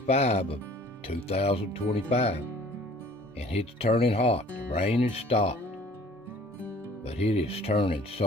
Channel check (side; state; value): both; normal; correlation 0.52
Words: of 2025. And it's turning hot. The rain has stopped. But it is turning